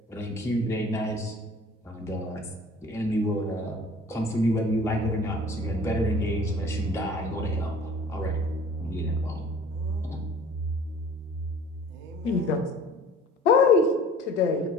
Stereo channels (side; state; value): both; normal; correlation 0.47